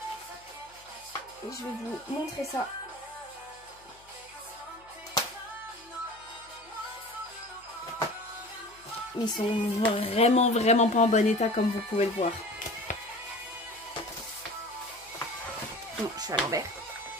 Et je vais vous montrer ça. Ils sont vraiment pas en bon état comme vous pouvez le voir. Non, je suis à l'envers.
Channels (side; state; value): left; noise; hum, 28 dB below the sound